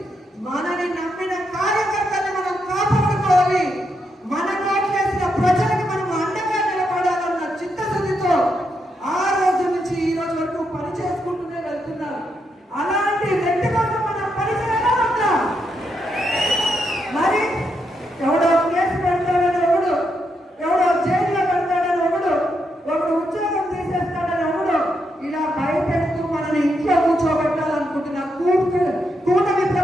మనని నమ్మిన కార్యకర్తల్ని మనం కాపాడుకోవాలి, మన కోట్లేసిన ప్రజలకి మనం అండగా నిలబడాలన్న చిత్తశుద్ధితో ఆ రోజు నుంచి ఈ రోజు వరకు పని చేసుకుంటూనే వెళ్తున్నారు. అలాంటి వ్యక్తి కోసం మనం పనిచేయడం ఉందా? మరి ఎవడో కేసు పెడతాడని ఒకడు, ఎవడో జైల్లో పెడతాడని ఒకడు ఉద్యోగం తీసేస్తాడని ఒకడు ఇలా భయపెడుతూ మనని ఇంట్లో కూర్చోబెట్టాలనుకుంటున్న కూటమి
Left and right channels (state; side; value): normal; both; correlation 0.81